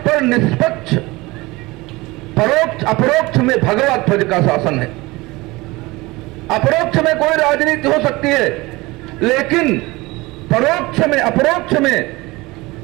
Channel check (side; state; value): left; quieter; 21.9 dB